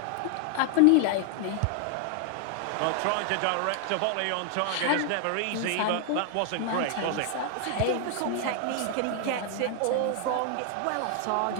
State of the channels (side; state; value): both; different; correlation 0.00